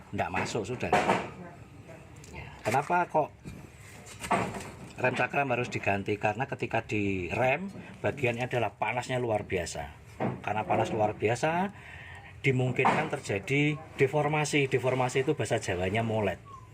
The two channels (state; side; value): identical; both; correlation 1.00